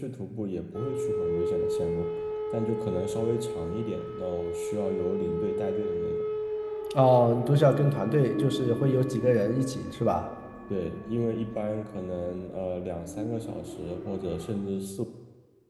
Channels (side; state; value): both; identical; correlation 1.00